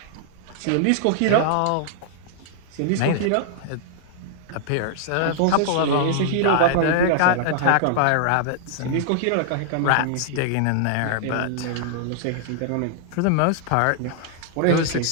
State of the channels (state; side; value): different; both; correlation -0.01